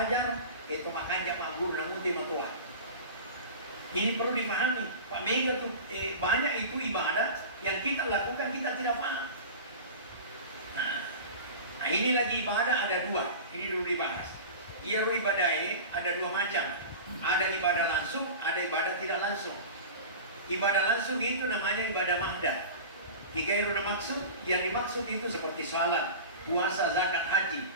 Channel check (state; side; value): inverted; both; correlation -0.34